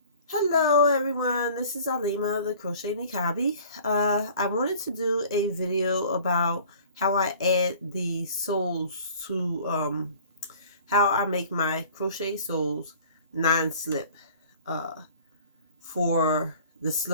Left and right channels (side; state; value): both; inverted; correlation -0.49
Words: Hello everyone, this is Alima, the Crochet Nikabi. I wanted to do a video about how I add the soles to, how I make my crochet soles non-slip for the